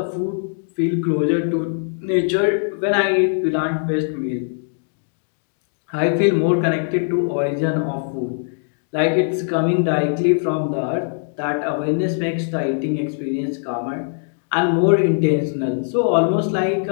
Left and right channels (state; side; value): silent; right; digital silence